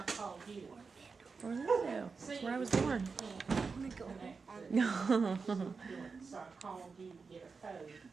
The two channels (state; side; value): quieter; left; 4.8 dB